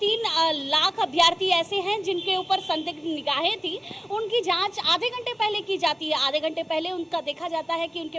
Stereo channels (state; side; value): normal; both; correlation 0.97